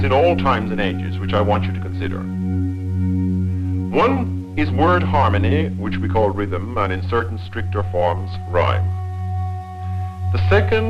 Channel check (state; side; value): identical; both; correlation 1.00